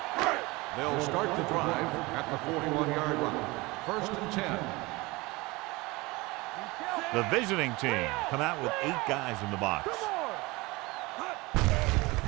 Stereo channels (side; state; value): left; quieter; 23.1 dB